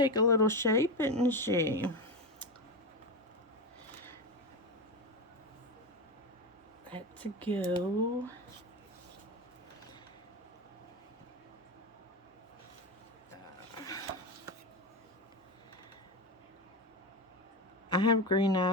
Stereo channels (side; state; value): both; normal; correlation 0.17